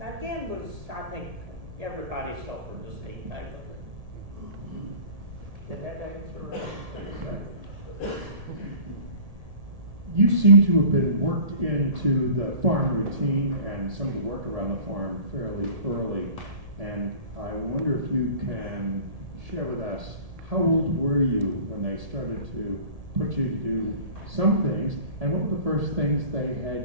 I think everybody suffered the same type of thing. Did that answer? You seem to have been worked into the farm routine and some of the work around the farm fairly early. And I wonder if you can share with us, how old were you when they started to put you to do some things, and what were the first things they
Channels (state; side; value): late; left; 1.7 ms